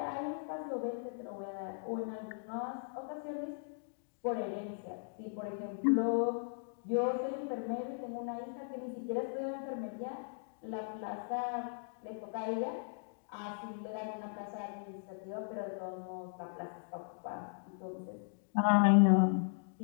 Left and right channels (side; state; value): right; silent; digital silence